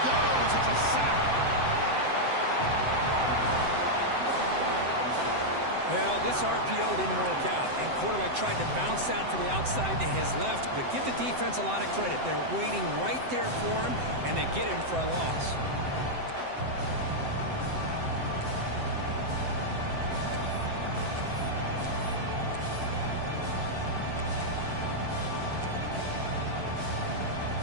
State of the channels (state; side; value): late; left; 7.8 ms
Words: goes. It's a sack. Well, this RPO didn't work out, and quarterback tried to bounce that to the outside to his left, but give the defense a lot of credit. They're waiting right there for him, and they get him for a loss.